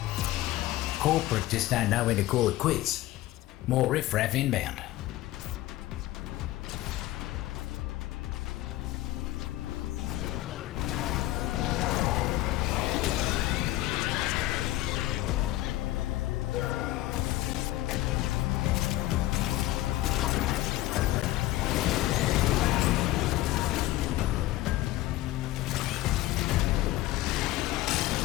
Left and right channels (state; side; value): quieter; right; 16.3 dB